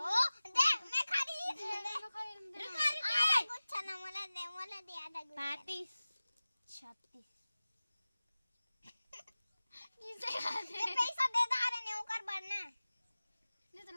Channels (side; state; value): both; inverted; correlation -0.97